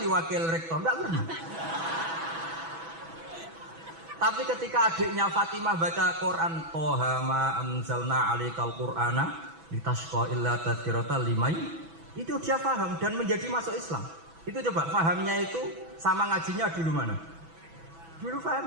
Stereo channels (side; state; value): left; late; 6.1 ms